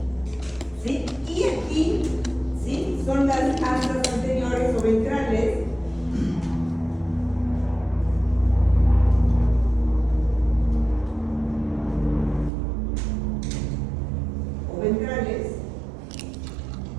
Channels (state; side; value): drops out; left; at 12.5 s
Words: ¿Sí? Y aquí, ¿sí? Son las astas anteriores o ventrales. Ventrales